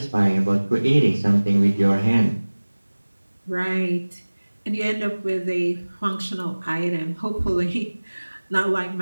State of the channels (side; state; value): both; inverted; correlation -1.00